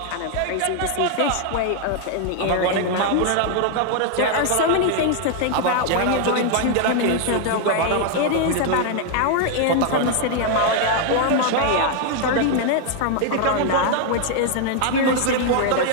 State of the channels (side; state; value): both; different; correlation 0.00